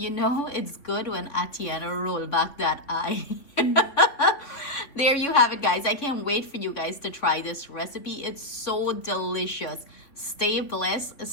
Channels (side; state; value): right; late; 3.5 ms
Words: know it's good when Atiana roll back that eye. There you have it, guys. I can't wait for you guys to try this recipe. It's so delicious. Stay blessed,